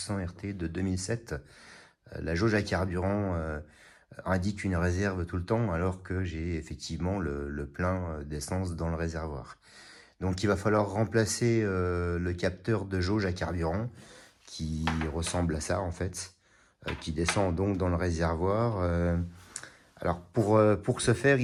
RT de 2007. La jauge à carburant indique une réserve tout le temps, alors que j'ai effectivement le plein d'essence dans le réservoir. Donc il va falloir remplacer le capteur de jauge à carburant, qui ressemble à ça en fait, qui descend donc dans le réservoir. Alors pour ce faire,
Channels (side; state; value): both; identical; correlation 1.00